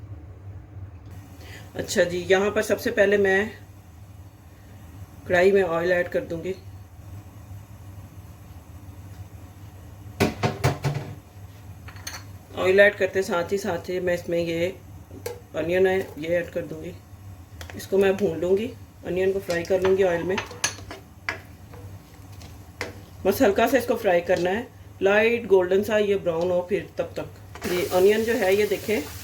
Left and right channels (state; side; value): identical; both; correlation 1.00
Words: अच्छा जी, यहाँ पर सबसे पहले मैं कढ़ाई में ऑयल ऐड कर दूंगी। ऑयल ऐड करते साथ ही मैं इसमें ये अनियन है ये ऐड कर दूंगी। इसको मैं भून लूँगी, अनियन को फ्राई कर लूँगी ऑयल में। बस हल्का सा इसको फ्राई करना है, लाइट गोल्डन सा ये ब्राउन हो फिर तब तक। ये अनियन जो है ये देखें